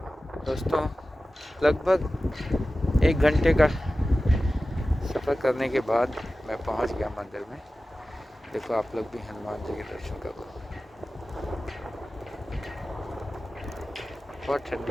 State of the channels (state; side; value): normal; both; correlation 0.95